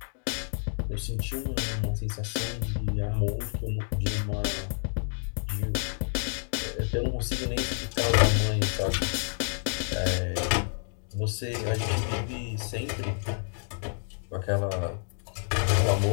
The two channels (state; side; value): silent; right; digital silence